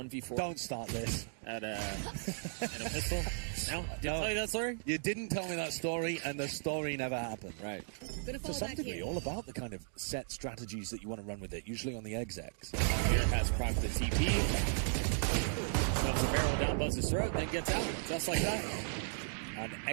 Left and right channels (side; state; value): left; silent; digital silence